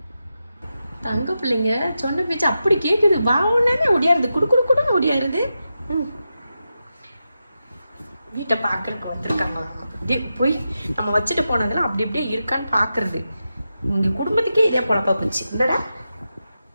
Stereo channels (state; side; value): inverted; both; correlation -0.89